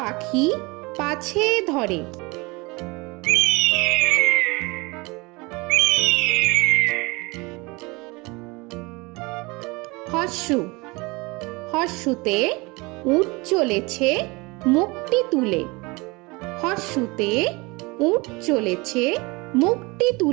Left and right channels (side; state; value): left; quieter; 25.2 dB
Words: পাছে ধরে। হর্ষু হর্ষুতে উট চলেছে মুখটি তুলে। হর্ষুতে উট চলেছে মুখটি